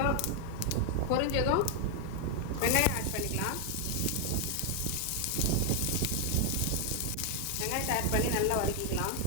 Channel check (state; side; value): different; both; correlation 0.01